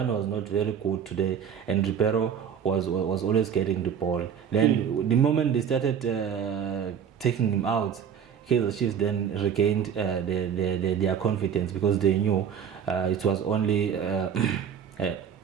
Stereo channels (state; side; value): quieter; left; 8.0 dB